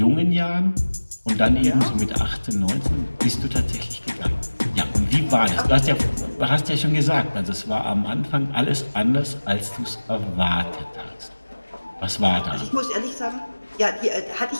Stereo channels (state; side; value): inverted; both; correlation -1.00